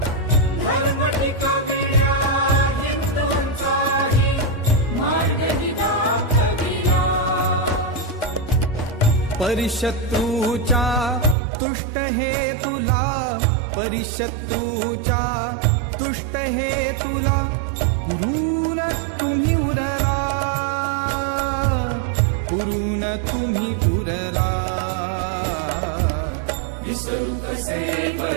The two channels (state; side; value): drops out; left; at 11.4 s